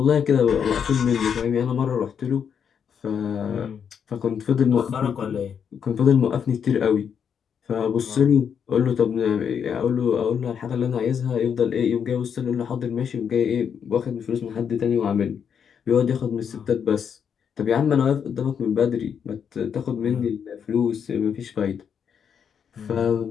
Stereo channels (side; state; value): right; quieter; 7.5 dB